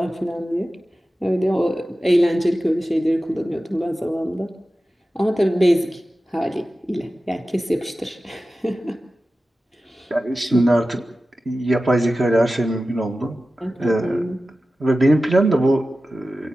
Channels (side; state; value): both; normal; correlation 0.94